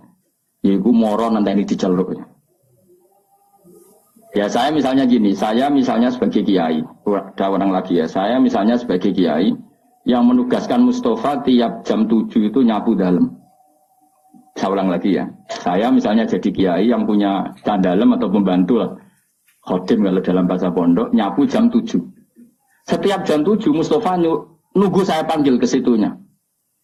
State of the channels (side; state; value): both; identical; correlation 1.00